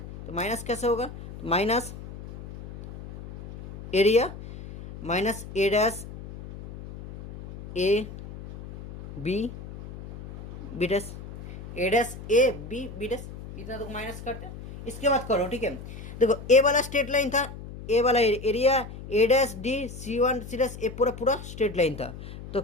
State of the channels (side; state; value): left; noise; hum, 13 dB below the sound